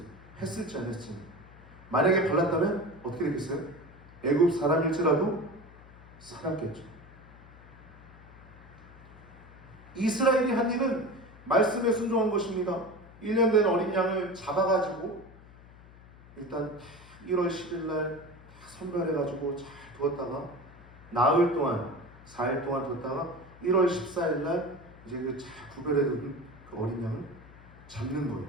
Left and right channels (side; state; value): left; noise; hum, 21 dB below the sound